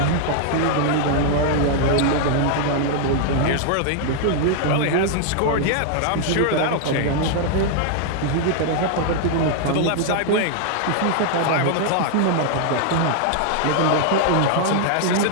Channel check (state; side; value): different; both; correlation 0.00